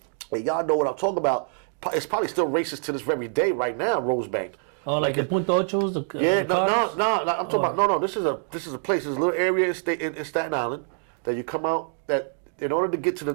And y'all know what I'm talking about. It's probably still racist to this very day right now, Rosebank. Oh, like the Punta Ochos? Yeah, no, I'm talking about, no, this is a place, this is a little area in Staten Island that you come out, that in order to get to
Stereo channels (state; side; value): silent; left; 61 dB below the other